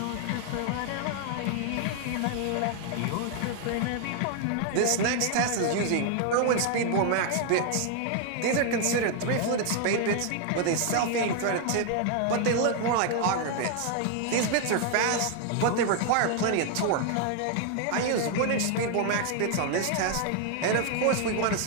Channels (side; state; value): both; different; correlation 0.00